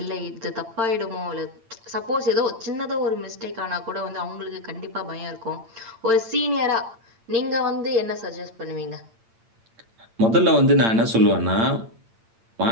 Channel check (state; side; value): late; left; 8.8 ms